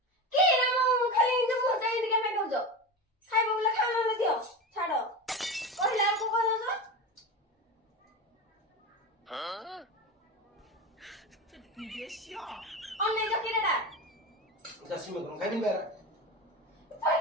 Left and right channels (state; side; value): normal; both; correlation 0.24